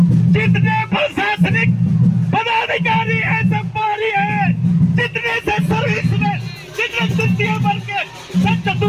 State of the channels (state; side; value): identical; both; correlation 1.00